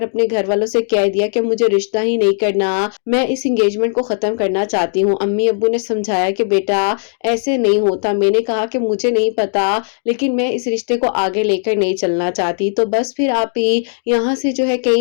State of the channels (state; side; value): silent; right; digital silence